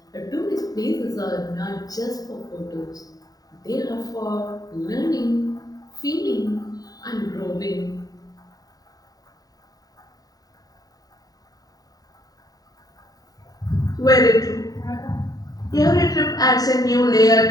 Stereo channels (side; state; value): right; late; 0.18 ms